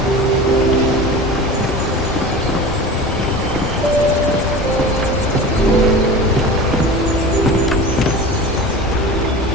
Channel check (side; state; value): both; normal; correlation 0.34